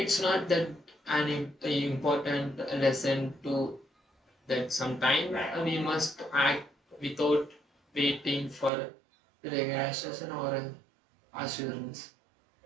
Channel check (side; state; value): left; drops out; at 8.7 s